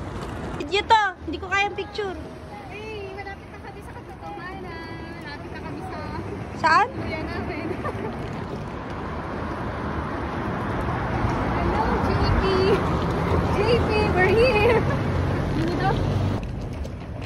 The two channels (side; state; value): both; identical; correlation 1.00